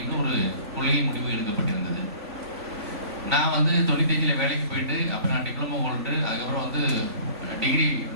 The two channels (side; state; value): left; late; 3.6 ms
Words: ஒரு கொள்கை முடிவு எடுக்கப்பட்டிருந்தது. நான் வந்து 95 வேலைக்கு போயிட்டு அப்புறம் நான் டிப்ளமோ ஹோல்டு, அதுக்கப்புறம் வந்து டிகிரி